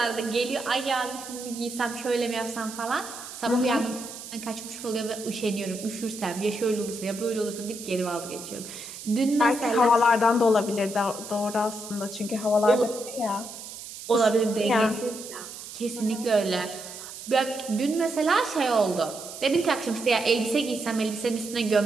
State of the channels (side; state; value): right; noise; hiss, 12 dB below the sound